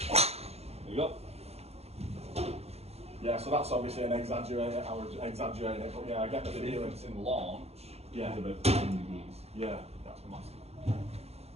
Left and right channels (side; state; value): left; late; 0.30 ms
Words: There you go. Yeah, so that's obviously an exaggerated, I would exaggerate it, but yeah, I get the The feeling. difference in launch Yeah. is about 15 degrees. Yeah. That's massive.